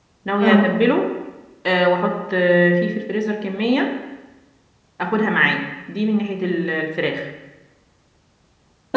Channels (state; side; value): identical; both; correlation 1.00